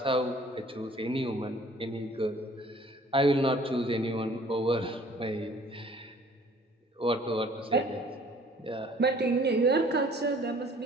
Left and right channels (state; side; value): normal; both; correlation 0.54